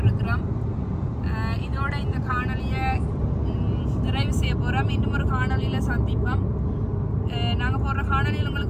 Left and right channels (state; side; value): identical; both; correlation 1.00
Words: இதோட இந்த காணொலியை நிறைவு செய்ய போகிறோம் இன்னும் ஒரு காணொலியில் சந்திப்போம் நாங்கள் போடுற காணொலியில்